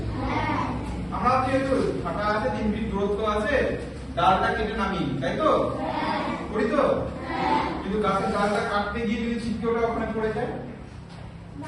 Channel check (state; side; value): identical; both; correlation 1.00